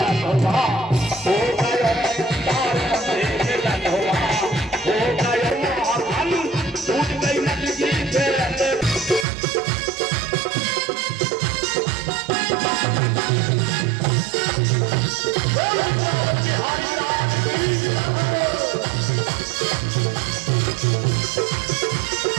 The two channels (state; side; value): drops out; left; at 9.2 s